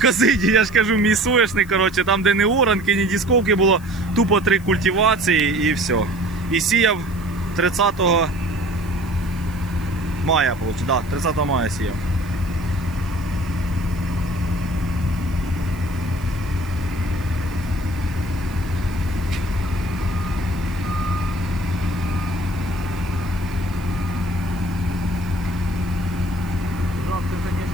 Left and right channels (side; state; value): left; noise; hiss, 22 dB below the sound